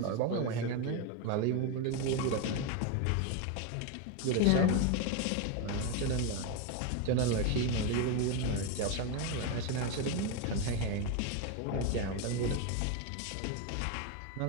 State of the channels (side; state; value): both; different; correlation 0.02